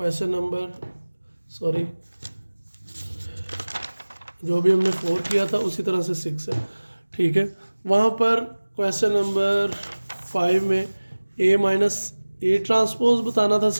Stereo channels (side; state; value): both; inverted; correlation -1.00